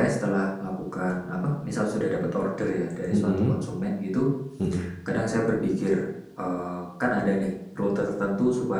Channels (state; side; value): identical; both; correlation 1.00